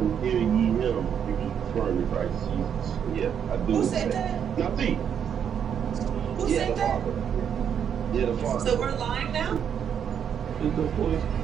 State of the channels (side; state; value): left; quieter; 8.3 dB